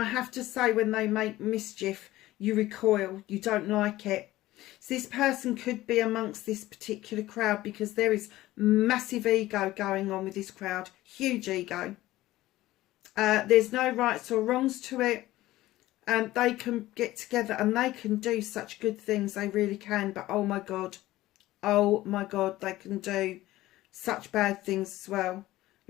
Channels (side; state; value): right; quieter; 16.4 dB